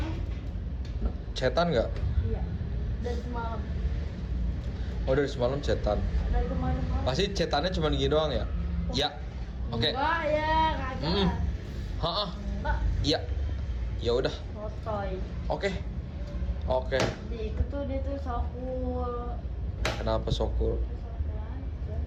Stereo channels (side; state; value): both; identical; correlation 1.00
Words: Chatan nggak? Iya. Dari semalam. Oh dari semalam chatan. Dari kemarin. Pasti chatannya cuma gini doang ya? Ya. Oke. Enggak ya, kagak. Hah? Enggak, Iya. Ya udah. sotoy. Oke. Oke. Di itu tuh dia tuh sokul. Kenapa Sokul? Sotoy aja.